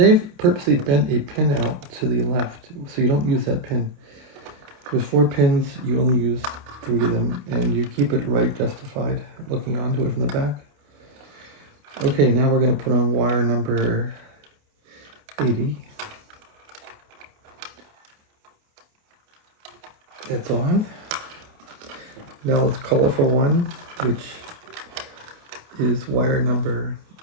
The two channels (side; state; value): left; late; 28 ms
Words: purposely bent a pin out to the left, so you don't use that pin. There's 4 pins, you only use 3 of them, and you keep it right justified, looking onto it from the back. Okay, now we're going to put on wire number 80. It's on. Now let's colorful one, which is wire number